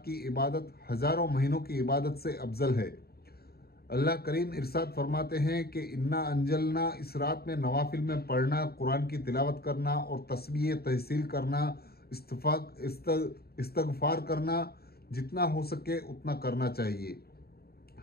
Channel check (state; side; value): late; right; 0.45 ms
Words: की इबादत हज़ारों महीनों की इबादत से अफजल है। अल्लाह करीम इरशाद फरमाते हैं कि इन्ना अंजलना, इस रात में नवाफिल में पढ़ना, कुरान की तिलावत करना और तस्बीह तहसील करना, इस्तगफार करना, जितना हो सके उतना करना चाहिए।